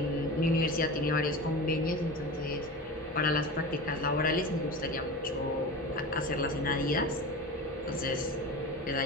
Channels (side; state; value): both; normal; correlation 0.30